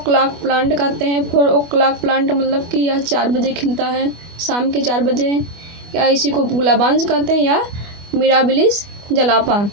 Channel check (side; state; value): left; late; 25 ms